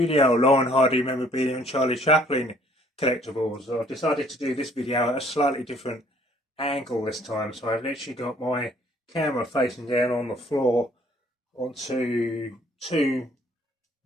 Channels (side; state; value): both; normal; correlation 0.60